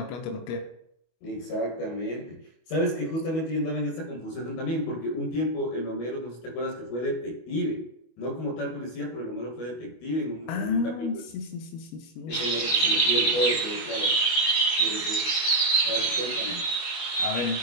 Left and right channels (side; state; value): right; late; 25 ms